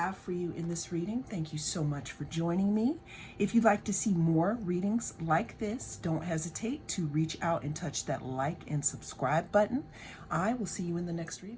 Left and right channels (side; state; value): both; identical; correlation 1.00